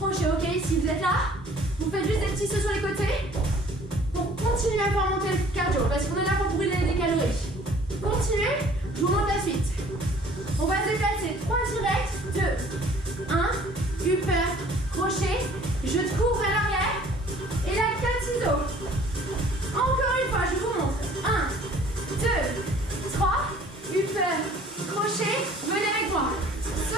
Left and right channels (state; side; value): normal; both; correlation 0.53